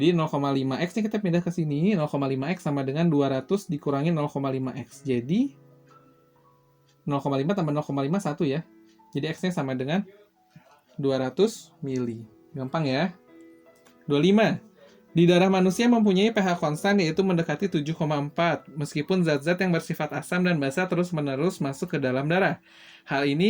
0,5X-nya kita pindah ke sini, 0,5X sama dengan 200 dikurangi 0,5X. Jadi 0,5 tambah 0,5 1 ya. Jadi X-nya sama dengan 200 mili. Gampang ya. 25. Di darah manusia mempunyai pH konstan yaitu mendekati 7,4 meskipun zat-zat yang bersifat asam dan basa terus-menerus masuk ke dalam darah. Hal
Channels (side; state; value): both; identical; correlation 1.00